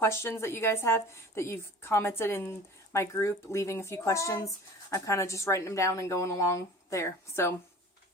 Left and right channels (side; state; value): both; normal; correlation 0.42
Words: that you guys have, that you've commented in my group, leaving a few questions. I'm kind of just writing them down and going along there. So,